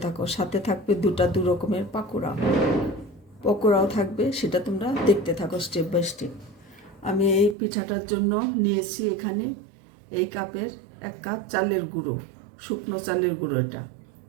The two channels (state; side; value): drops out; left; at 7.6 s